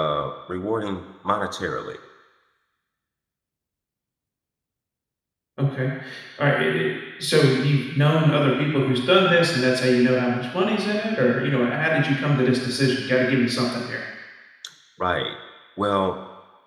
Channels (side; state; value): both; identical; correlation 1.00